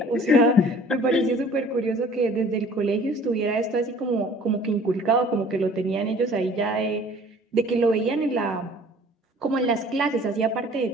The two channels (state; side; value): normal; both; correlation 0.51